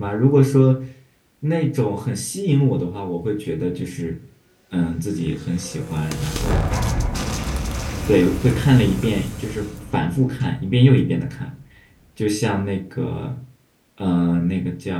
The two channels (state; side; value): identical; both; correlation 1.00